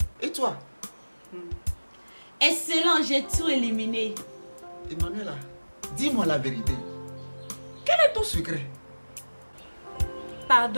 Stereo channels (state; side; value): inverted; both; correlation -1.00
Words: Et toi? Excellent, j'ai tout éliminé. Emmanuela, dis-moi la vérité. Quel est ton secret?